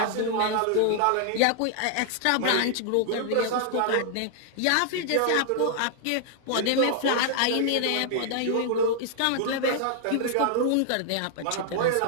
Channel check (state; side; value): different; both; correlation 0.00